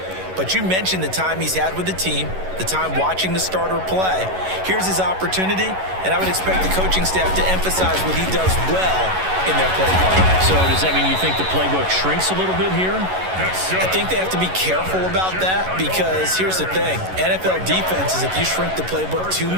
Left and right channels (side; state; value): left; late; 11 ms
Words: But you mentioned the time he's had with the team, the time watching the starter play. Here's his opportunity, and I would expect the coaching staff to emphasize what he does well in their play plan. So does that mean you think the playbook shrinks a little bit here? I think they have to be careful about that because here's the thing. NFL defenses, if you shrink the playbook too